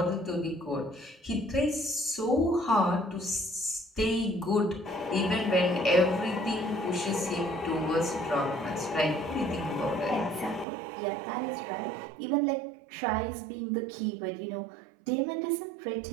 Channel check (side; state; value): left; drops out; at 10.7 s